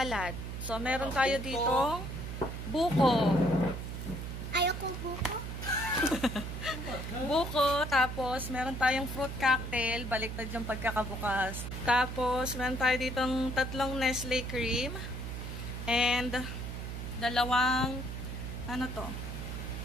So, meron tayo dito buko. Ayoko buko. Buko, tapos meron tayong fruit cocktail, baliktad yung pagkakabukas. Tapos, meron tayo ditong 3 Nestle cream and 2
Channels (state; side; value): noise; right; hum, 6 dB below the sound